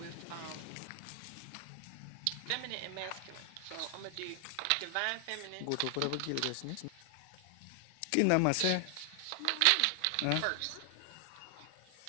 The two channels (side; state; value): both; different; correlation 0.00